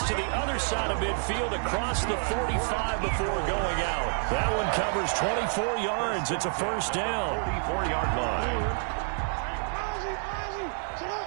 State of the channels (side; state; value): left; silent; 59 dB below the other